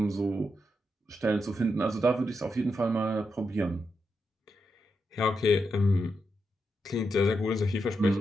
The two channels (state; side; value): normal; both; correlation 0.85